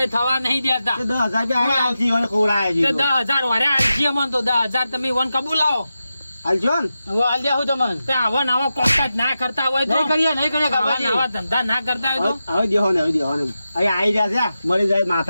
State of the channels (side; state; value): both; inverted; correlation -0.91